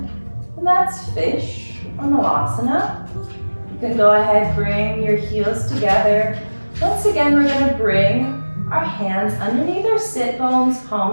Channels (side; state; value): both; inverted; correlation -1.00